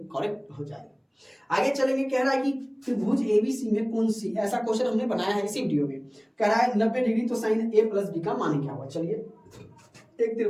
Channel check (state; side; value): identical; both; correlation 1.00